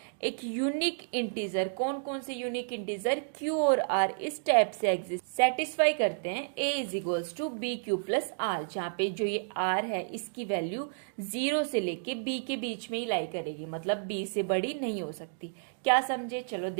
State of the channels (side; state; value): left; silent; digital silence